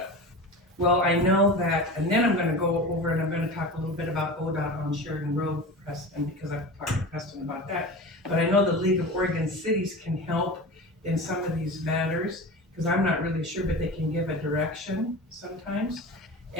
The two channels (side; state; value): both; normal; correlation 0.31